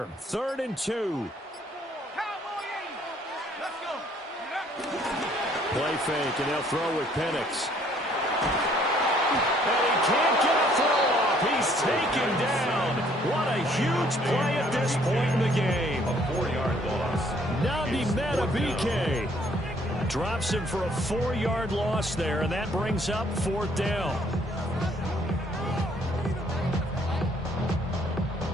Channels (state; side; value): normal; both; correlation 0.63